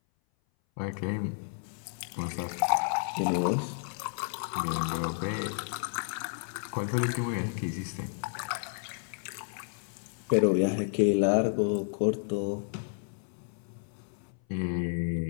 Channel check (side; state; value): right; silent; 57 dB below the other